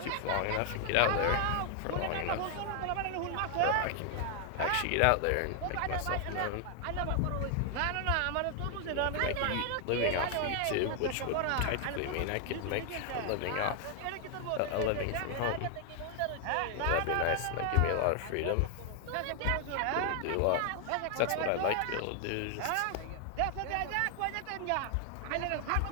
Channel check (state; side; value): different; both; correlation 0.00